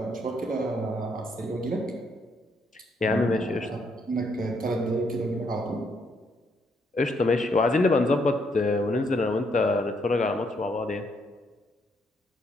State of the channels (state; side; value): normal; both; correlation 0.73